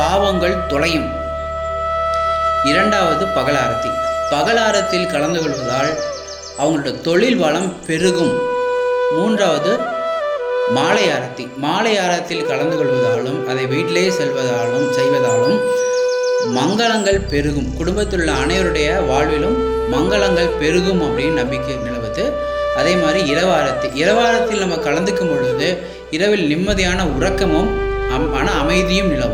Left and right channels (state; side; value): identical; both; correlation 1.00